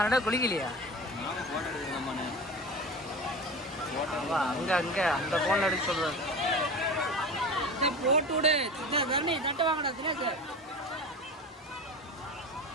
ரெண்டா குளிக்கலையா? அங்க அங்க அந்த போன்ல எடுக்க சொல்றாரு. போட்டு விடு. தரணி தட்ட வாங்கடா தினேஷ்.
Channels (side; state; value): both; normal; correlation 0.31